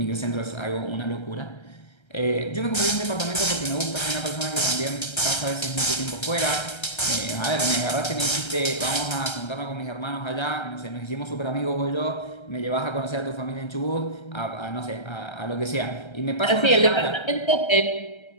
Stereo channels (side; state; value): right; late; 1.3 ms